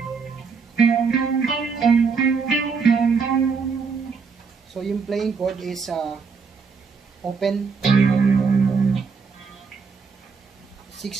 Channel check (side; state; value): left; quieter; 5.2 dB